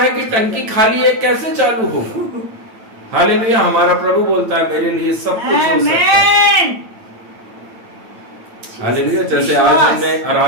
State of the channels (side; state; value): left; late; 9.0 ms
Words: कि टंकी खाली है, कैसे चालू हो? हालेलुया। हमारा प्रभु बोलता है मेरे लिए सब कुछ हो सकता है। आमेन। हालेलुया। जैसे आज हमने